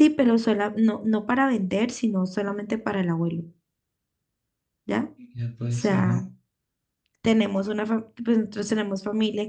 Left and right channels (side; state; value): both; identical; correlation 1.00